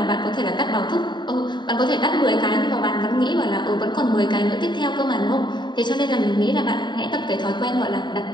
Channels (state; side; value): late; right; 0.22 ms